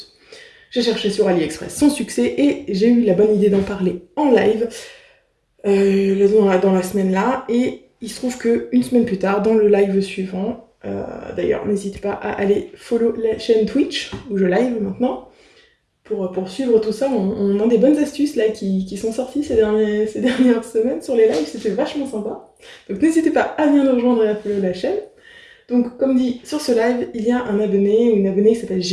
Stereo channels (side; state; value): both; identical; correlation 1.00